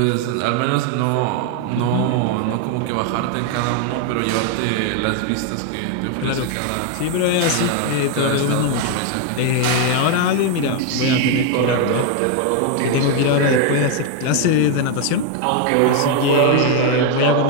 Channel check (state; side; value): different; both; correlation 0.01